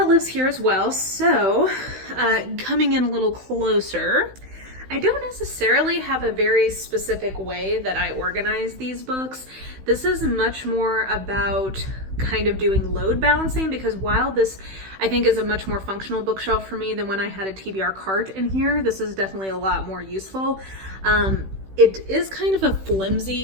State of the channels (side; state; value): left; late; 16 ms